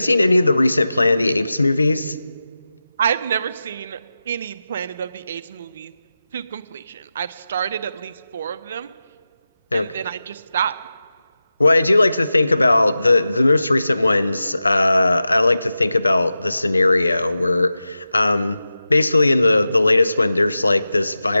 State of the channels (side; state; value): both; inverted; correlation -0.93